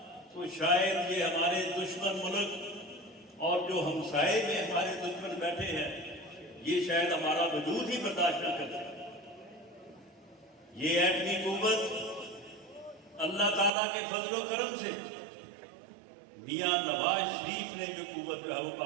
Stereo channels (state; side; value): drops out; left; at 13.7 s